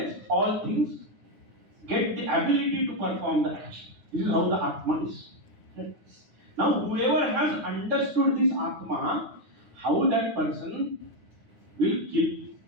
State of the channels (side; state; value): left; late; 9.6 ms